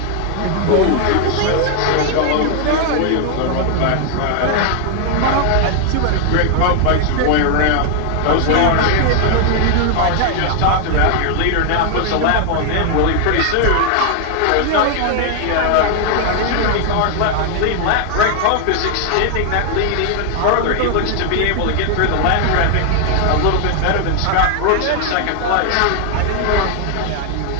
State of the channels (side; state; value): both; different; correlation 0.00